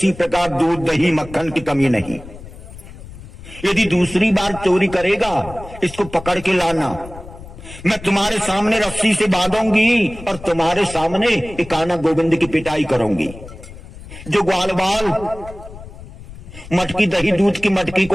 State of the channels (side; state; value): left; noise; rumble, 16 dB below the sound